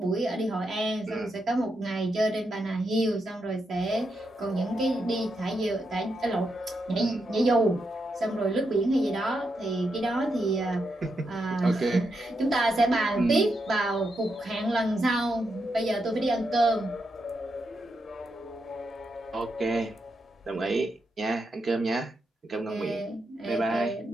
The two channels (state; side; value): normal; both; correlation 0.84